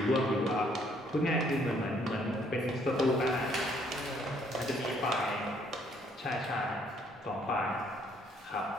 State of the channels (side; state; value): both; normal; correlation 0.66